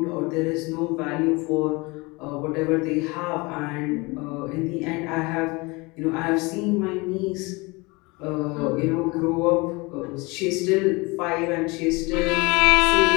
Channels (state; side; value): quieter; right; 25.5 dB